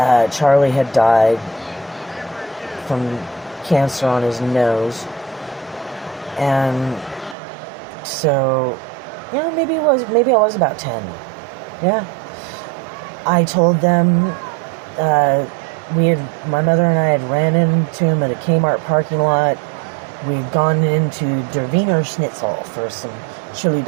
Charlie had died from cancer on his nose. And so, maybe I was about 10. Yeah. I told them, my mother and I had ran into him at a Kmart parking lot. We'd gone into Der Wiener Schnitzel for some chili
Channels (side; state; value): left; drops out; at 7.4 s